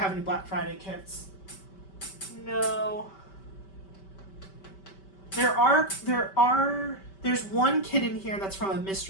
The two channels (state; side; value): late; right; 5.2 ms